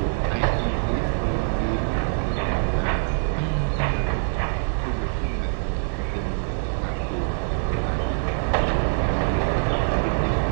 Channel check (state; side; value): silent; left; digital silence